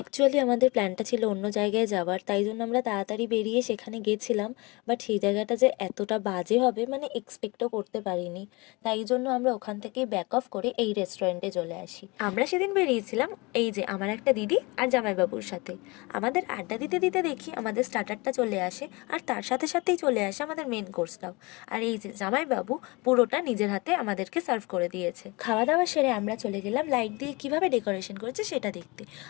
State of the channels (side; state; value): right; quieter; 25.7 dB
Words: আমাদের প্ল্যানটা ছিল অন্য জায়গায় যাওয়ার, তাই জন্য আমরা তাড়াতাড়ি বেরিয়ে সেখানে গেছিলাম। বাট সেই জায়গাটা যে এতটা বাজে হবে মানে এক্সপেক্টও করতে পারিনি। তাই জন্য আমরা ওখান থেকে ব্যাক অফ করে এই রেস্টুরেন্টে চলে আসি। আমরা সেদিন বেরিয়েছিলাম এই যে আমার একটা দিদি আর জামাইবাবুর সাথে। আমাদের আড্ডা দিতে দিতে দেখি আমাদের স্টার্টারটা চলে আসে, আর তার সাথে সাথেই চলে আসে আমাদের মেন কোর্সটাও। আর এই যে জামাইবাবু পুরোটা নিজের হাতে আমাদেরকে সার্ভ করে দিয়েছে। খাওয়া দাওয়া সেরে আমরা চলে গেলাম লাইট দিয়ে কিভাবে ডেকোরেশন করেছে সেটা দেখতে।